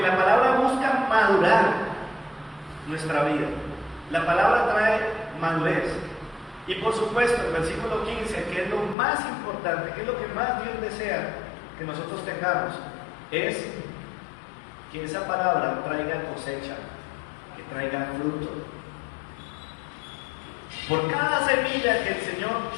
la palabra busca madurar nuestra vida. La palabra trae madurez. Y por supuesto, el versículo 15, que es lo más importante, que es lo que más Dios desea que nosotros tengamos, es que esa palabra traiga cosecha, que traiga fruto. Por cada semilla que el Señor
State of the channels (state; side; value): drops out; right; at 9.0 s